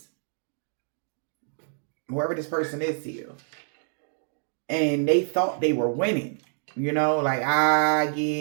Whoever this person is to you. And they thought they were winning. Like,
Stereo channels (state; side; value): silent; left; digital silence